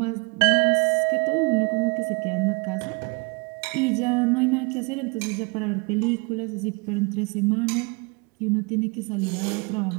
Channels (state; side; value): quieter; left; 30.7 dB